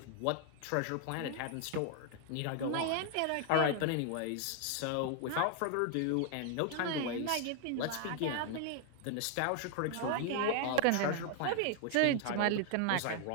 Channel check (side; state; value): both; different; correlation 0.00